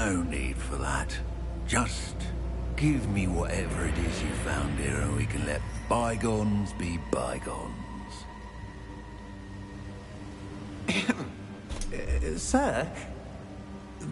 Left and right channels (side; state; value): both; identical; correlation 1.00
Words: need for that. Just give me whatever it is you found here and we can let bygones be bygones. Sir,